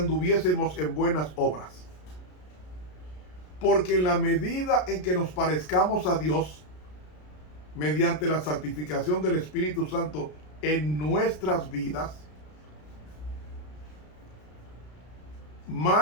en buenas obras? Porque en la medida en que nos parezcamos a Dios, mediante la santificación del Espíritu Santo en nuestras vidas,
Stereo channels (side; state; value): right; late; 33 ms